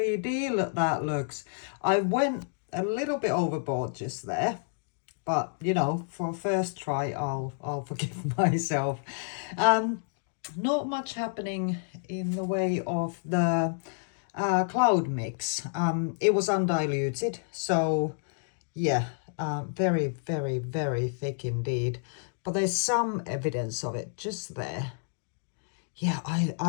that looks. I went a little bit overboard just there. But you know, for a first try, I'll forgive myself. Not much happening in the way of the cloud mix. It was undiluted, so yeah, very, very, very thick indeed. But there's some evidence of it just there. Yeah,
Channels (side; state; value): right; silent; digital silence